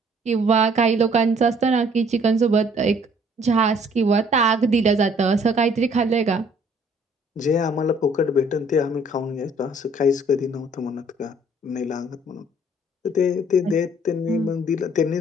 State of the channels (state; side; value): normal; both; correlation 0.59